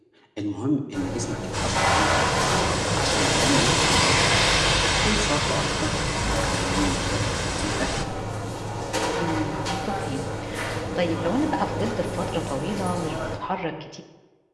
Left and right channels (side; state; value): both; identical; correlation 1.00